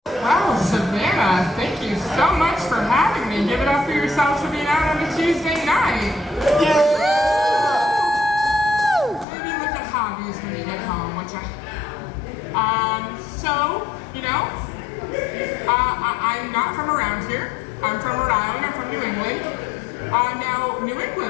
Well, Savannah, thank you so much for having me. Give it up for yourselves for being out on a Tuesday night. Yeah! Maybe look at hobbies when you get home, which I'm not from around here. I'm from Rhode Island, I'm from New England. Now, New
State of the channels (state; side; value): drops out; right; at 9.2 s